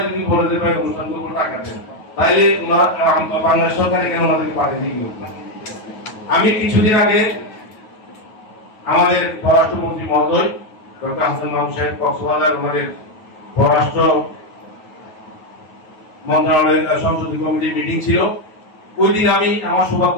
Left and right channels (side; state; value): right; late; 9.4 ms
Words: যদি বলে দেয় ভাই অনুষ্ঠান করবো টাকা দেন, তাইলে ওনারা বাংলাদেশ সরকার এখানে ওনাদেরকে পাঠিয়ে দিয়ে। আমি কিছুদিন আগে আমাদের পররাষ্ট্রমন্ত্রী মহোদয় ডক্টর হাসান মাহমুদ সাহেব কক্সবাজার, ওনাদের পররাষ্ট্র মন্ত্রণালয়ের সংসদীয় কমিটির মিটিং ছিল। ওই দিন আমি আমার সৌভাগ্য